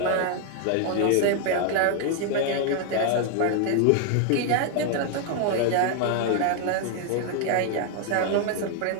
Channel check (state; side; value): different; both; correlation 0.00